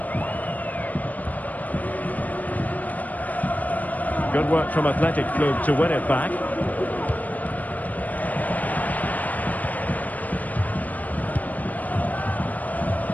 Good work from Athletic Club to win it back.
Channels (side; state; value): right; late; 0.077 ms